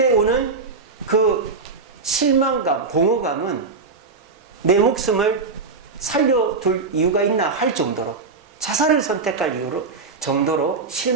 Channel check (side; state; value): left; quieter; 4.3 dB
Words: 오는 그 실망감, 공허감은 내 목숨을 살려둘 이유가 있나 할 정도로, 자살을 선택할 이유로 정도로